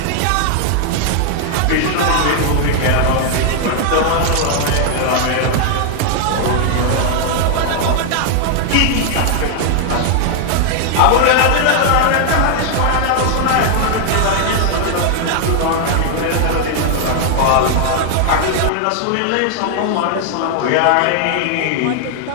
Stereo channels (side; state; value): both; different; correlation 0.00